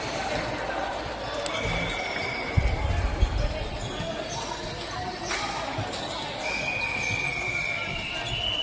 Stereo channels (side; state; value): both; identical; correlation 1.00